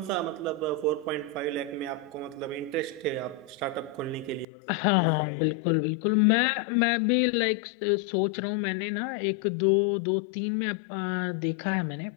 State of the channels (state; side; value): drops out; right; at 4.5 s